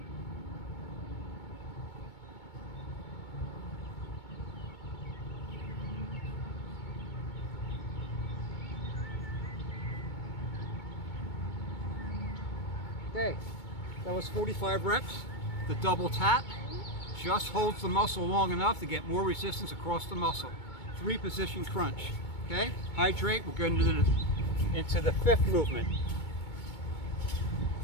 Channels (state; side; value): late; right; 2.2 ms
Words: Okay, that was 45 reps. The double tap just holds the muscle long enough to get more resistance across the muscle. 3 position crunch. Okay, hydrate. We're going into the 5th movement.